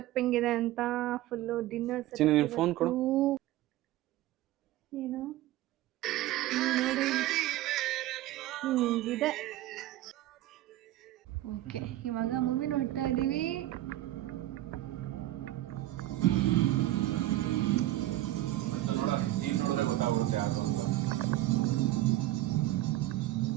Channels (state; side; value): quieter; left; 15.2 dB